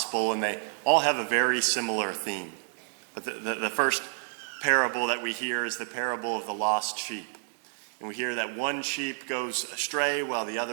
and they all have a very similar theme. But the first parable that we hear is the parable of the lost sheep. And we hear that one sheep goes astray while the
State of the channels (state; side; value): silent; left; digital silence